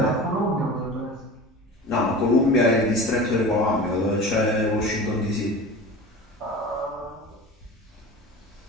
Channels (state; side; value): normal; both; correlation 0.34